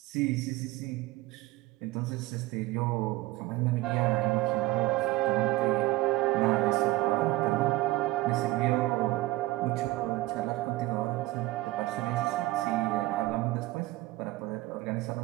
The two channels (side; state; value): left; quieter; 18.8 dB